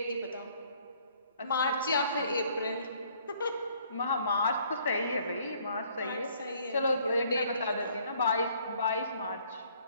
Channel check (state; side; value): inverted; both; correlation -0.62